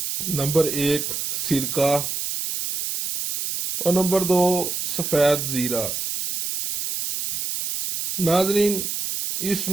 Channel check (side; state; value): right; noise; hiss, 3 dB below the sound